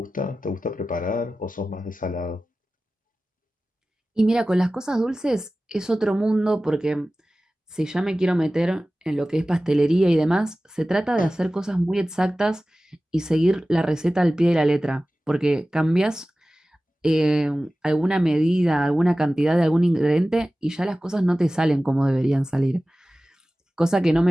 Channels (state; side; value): normal; both; correlation 0.96